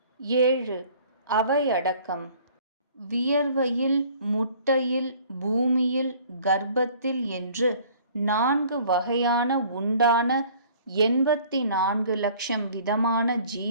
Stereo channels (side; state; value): both; inverted; correlation -0.53